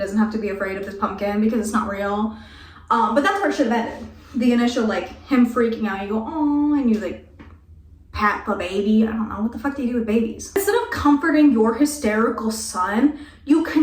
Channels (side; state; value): both; identical; correlation 1.00